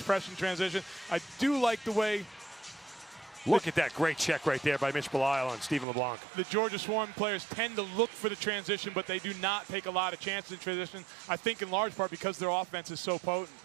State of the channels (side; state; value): left; drops out; at 5.9 s